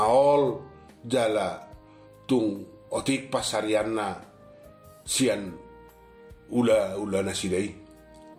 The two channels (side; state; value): both; identical; correlation 1.00